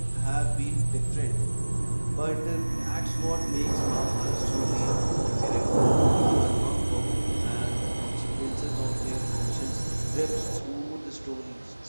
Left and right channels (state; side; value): inverted; both; correlation -1.00